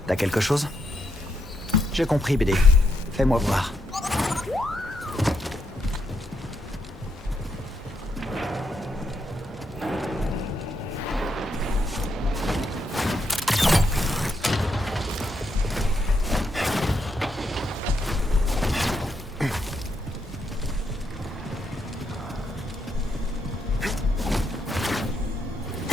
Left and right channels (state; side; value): normal; both; correlation 0.79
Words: T'as quelque chose? J'ai compris, BD. Fais-moi voir.